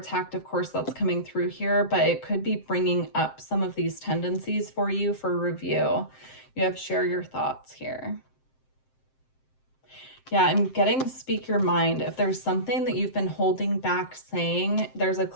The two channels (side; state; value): right; late; 7.6 ms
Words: of course, that's coming through here, but it could be bringing up some of these tendencies for you for review. You have share your thoughts here. Yeah, I'm getting speak your mind. If there's something that you've been holding back saying, there's a